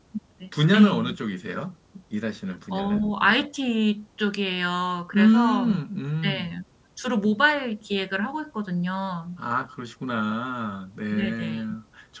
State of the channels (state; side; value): identical; both; correlation 1.00